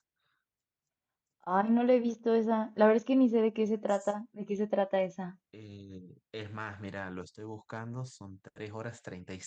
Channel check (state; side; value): identical; both; correlation 1.00